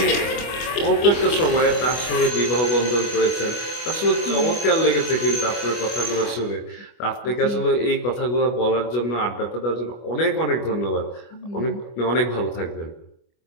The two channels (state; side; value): late; right; 25 ms